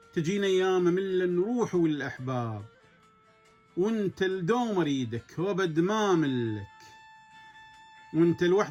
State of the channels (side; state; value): both; identical; correlation 1.00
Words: تجينا ايام ملة نروح والاحباب، وانت الدوم اريدك وابد ما ملك، وانت